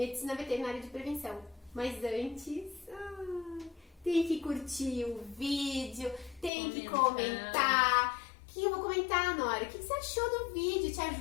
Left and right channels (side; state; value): right; drops out; at 6.5 s